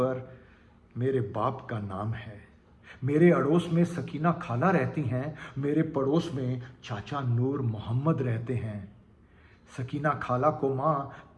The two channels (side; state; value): both; identical; correlation 1.00